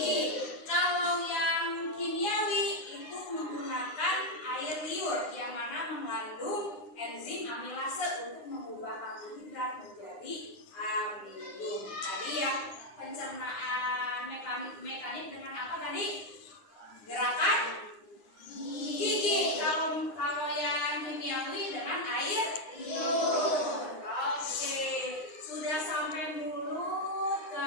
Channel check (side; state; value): right; late; 9.8 ms